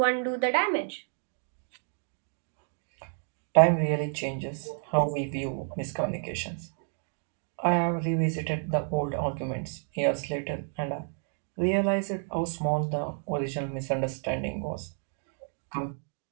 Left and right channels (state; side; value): silent; left; 58 dB below the other